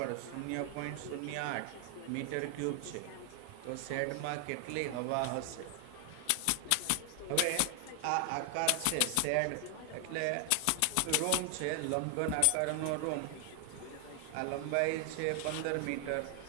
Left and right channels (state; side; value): different; both; correlation 0.00